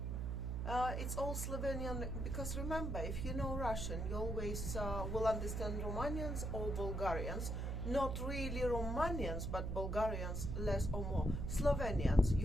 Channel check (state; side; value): noise; right; hum, 2 dB below the sound